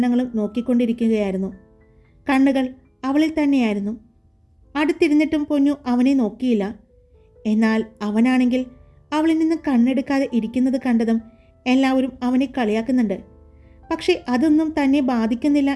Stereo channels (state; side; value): identical; both; correlation 1.00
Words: നോക്കിക്കൊണ്ടിരിക്കുകയായിരുന്നു. കണ്ണുകൾ അവളിൽ തന്നെയായിരുന്നു. അടുത്തിരുന്നിട്ടും പൊന്നു അവനെ നോക്കിയില്ല. എന്നാൽ അവനാണെങ്കിൽ അവളിൽ നിന്ന് കണ്ണെടുക്കാതെ ഇരിക്കുന്നത് കണ്ടതും എല്ലാവരും അവനെ കളിയാക്കുന്നുണ്ട്. പക്ഷെ അതൊന്നും തന്നെ ബാധിക്കുന്നില്ല